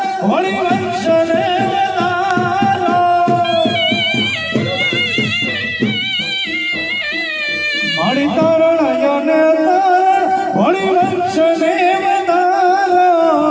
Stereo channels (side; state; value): both; identical; correlation 1.00